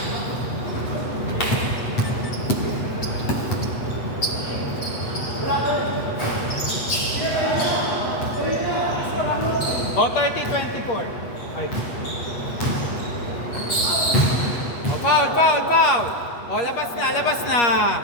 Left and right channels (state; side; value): late; right; 8.1 ms